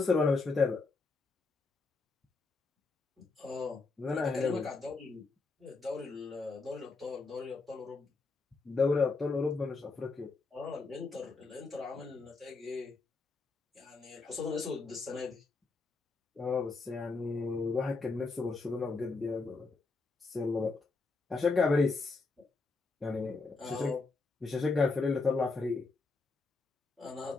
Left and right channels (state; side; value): quieter; right; 4.0 dB